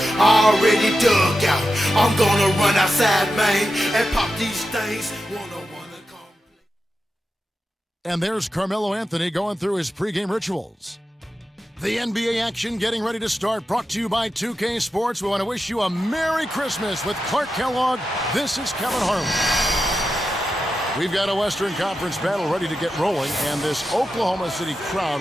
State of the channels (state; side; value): normal; both; correlation 0.90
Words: already dug out. I'm gonna run outside, man, and pop these things. Wanna come. And there's Carmelo Anthony going through his pregame rituals. The NBA action getting ready to start, brought to you by 2K Sports. We want to wish you a Merry Christmas with Clark Kellogg. This is Kevin Harlan. We've got a Western Conference battle ready to get rolling, and this Oklahoma City